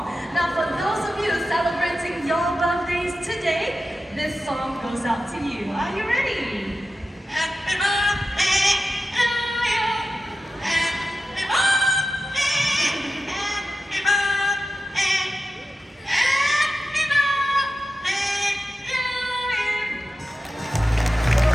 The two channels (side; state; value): both; normal; correlation 0.93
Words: Now, for those of you celebrating your birthdays today, this song goes out to you. Are you ready? Happy birthday to you. Happy birthday. Happy birthday. Happy birthday to you.